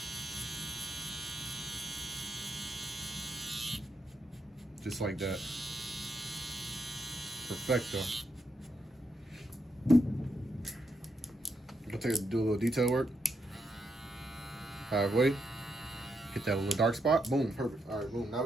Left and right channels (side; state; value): both; normal; correlation 0.81